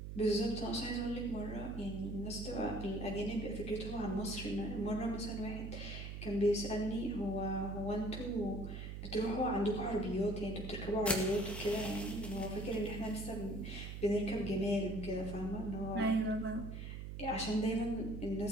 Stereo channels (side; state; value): right; noise; hum, 7 dB below the sound